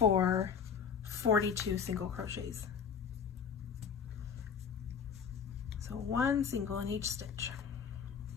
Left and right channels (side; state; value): right; quieter; 6.8 dB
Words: 42 single crochets. So 1 single in each stitch.